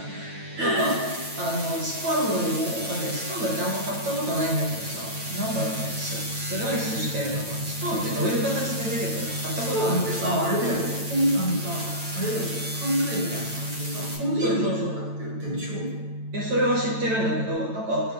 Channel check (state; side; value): late; left; 9.0 ms